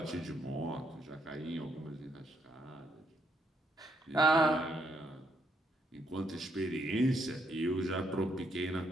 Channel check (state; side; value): normal; both; correlation 0.74